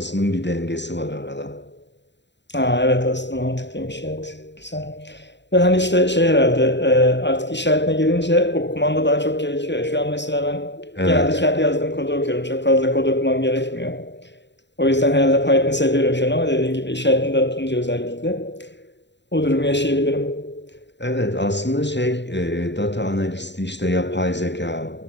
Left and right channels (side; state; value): right; late; 0.52 ms